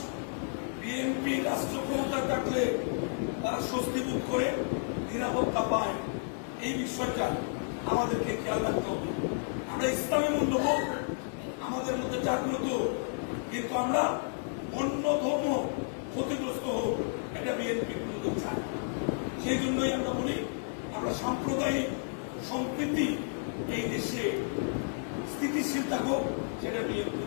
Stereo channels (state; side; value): silent; right; digital silence